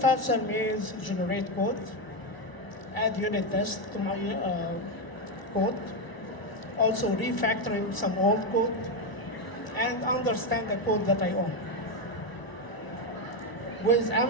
faster means generate code, add unit tests to my code, also refactoring some old code, and understand the code that I own. With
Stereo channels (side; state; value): right; late; 1.0 ms